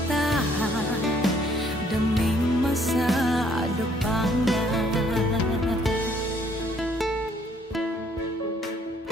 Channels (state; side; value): normal; both; correlation 0.64